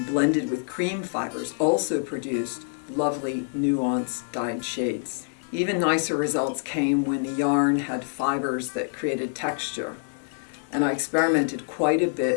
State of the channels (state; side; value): silent; right; digital silence